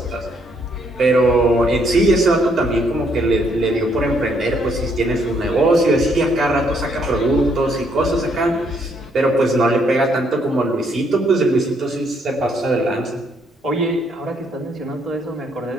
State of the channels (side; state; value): both; normal; correlation 0.70